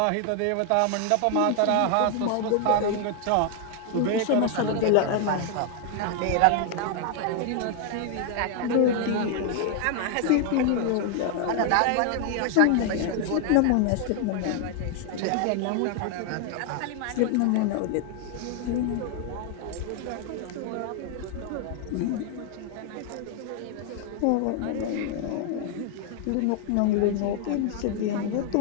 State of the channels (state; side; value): different; both; correlation 0.00